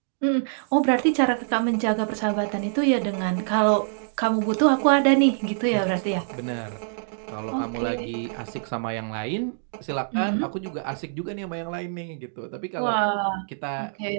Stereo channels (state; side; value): silent; left; digital silence